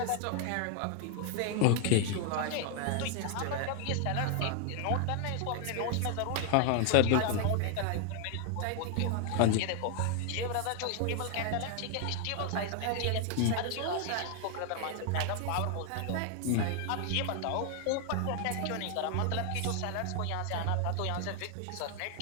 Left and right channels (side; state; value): both; different; correlation 0.00